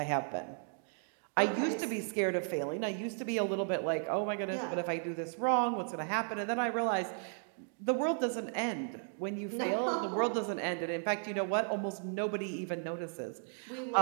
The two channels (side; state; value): left; silent; 54 dB below the other